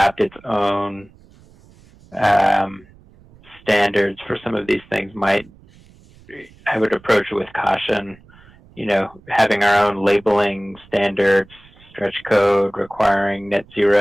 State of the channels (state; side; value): noise; right; rumble, 26 dB below the sound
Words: its own standards for some of these things I would approach it with caution. Having our own labeling standards, stretch code requiring net